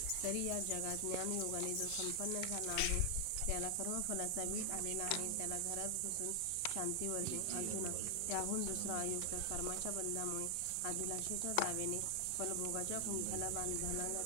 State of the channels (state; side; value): different; both; correlation 0.00